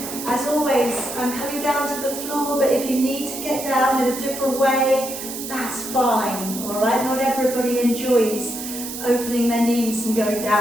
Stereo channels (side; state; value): right; noise; hiss, 8 dB below the sound